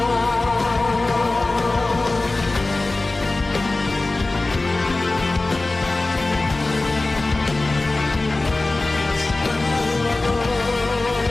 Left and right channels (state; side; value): quieter; right; 3.1 dB